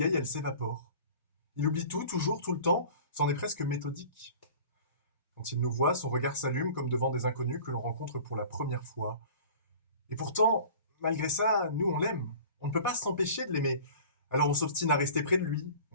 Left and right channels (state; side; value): inverted; both; correlation -0.43